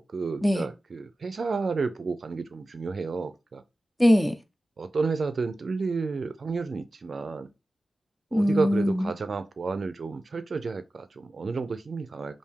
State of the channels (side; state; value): both; normal; correlation 0.95